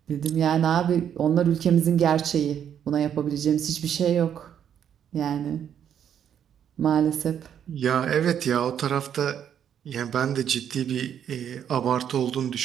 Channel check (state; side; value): quieter; left; 9.0 dB